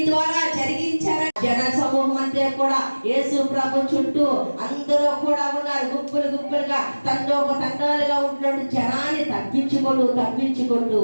ద్వారా జరిగించారు. జన సమూహం అంతా కూడా యేసు ప్రభు చుట్టూ అందరూ కూడా ఉన్నారు. గుంపులు గుంపులుగా తండోపతండాలుగా ఉంటున్న జనాన్ని తప్పించుకుంటూ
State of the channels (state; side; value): inverted; both; correlation -1.00